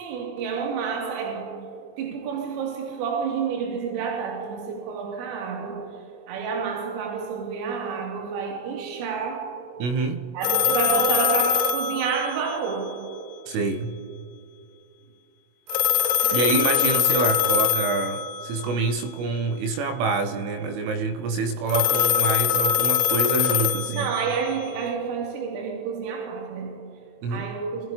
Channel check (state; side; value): late; left; 25 ms